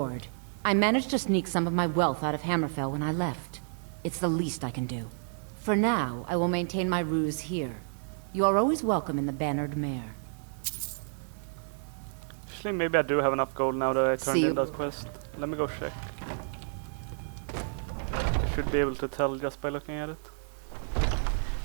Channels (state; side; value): silent; left; digital silence